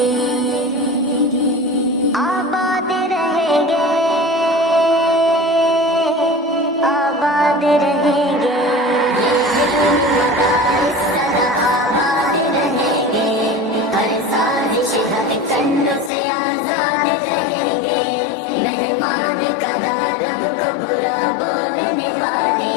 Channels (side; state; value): right; drops out; at 16.1 s